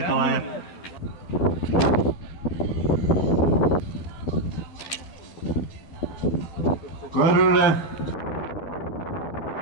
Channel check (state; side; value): late; right; 11 ms